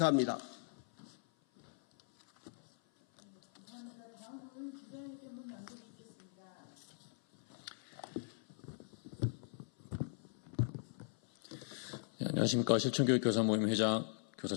안녕하십니까. 실천교육교사 모임 회장 교사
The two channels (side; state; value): right; silent; 51 dB below the other